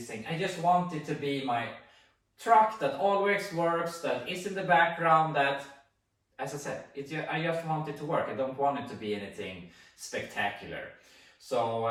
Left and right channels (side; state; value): both; identical; correlation 1.00